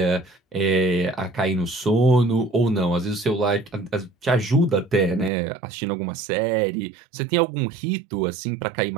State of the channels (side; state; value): left; drops out; at 5.3 s